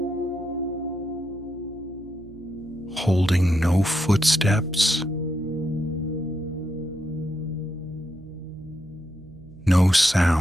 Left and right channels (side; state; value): right; noise; hum, 20 dB below the sound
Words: holding no footsteps, no